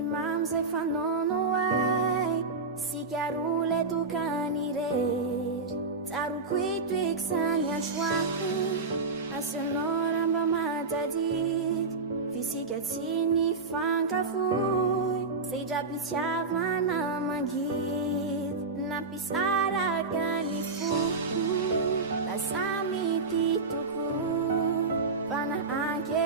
mamy zay fanaono ay sikarole tokany rery tsaroko itoeky sany androany asionao ramba matadity fisika tsy ny fankafoy zay drapitiavana mangidy nampisaraka ny foko lasa mity toko fana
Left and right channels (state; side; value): quieter; left; 4.0 dB